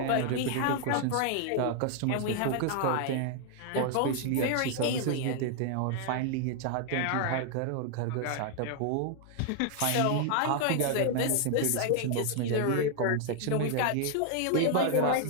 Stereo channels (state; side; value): different; both; correlation 0.00